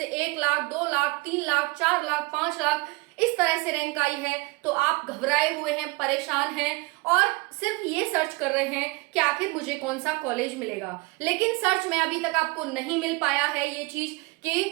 1 लाख, 2 लाख, 3 लाख, 4 लाख, 5 लाख, इस तरह से रैंक आई है, तो आप घबराए हुए हैं, परेशान हैं और सिर्फ ये सर्च कर रहे हैं कि आखिर मुझे कौन सा कॉलेज मिलेगा। लेकिन सर्च में अभी तक आपको नहीं मिल पाया है ये चीज,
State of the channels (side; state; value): left; quieter; 25.7 dB